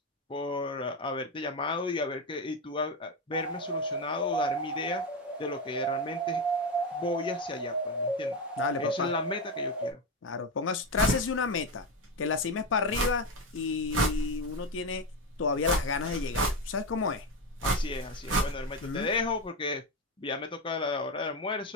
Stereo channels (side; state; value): both; normal; correlation 0.13